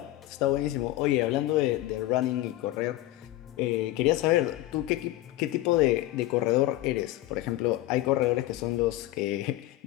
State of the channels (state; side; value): quieter; right; 16.0 dB